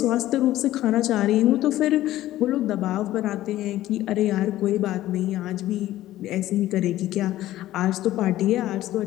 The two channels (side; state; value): right; quieter; 14.6 dB